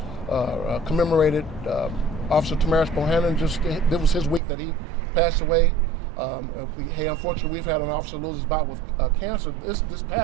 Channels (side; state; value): left; drops out; at 4.4 s